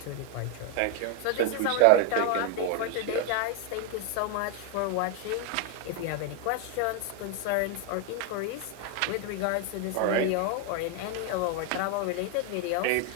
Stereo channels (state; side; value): different; both; correlation 0.01